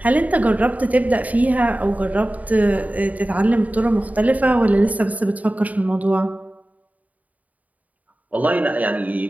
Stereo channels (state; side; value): late; left; 0.073 ms